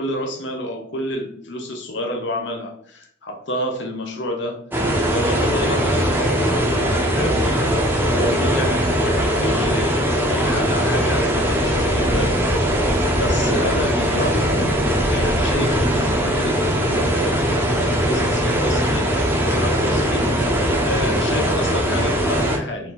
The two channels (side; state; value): both; normal; correlation 0.51